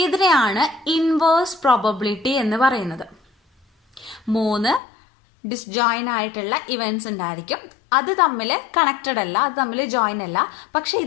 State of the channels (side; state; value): right; drops out; at 4.8 s